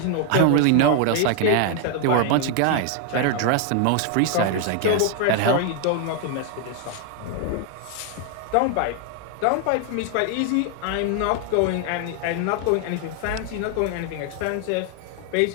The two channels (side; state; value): both; different; correlation 0.00